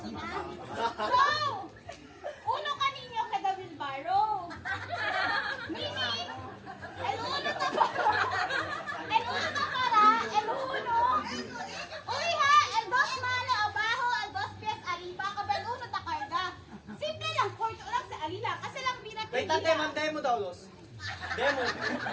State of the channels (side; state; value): both; identical; correlation 1.00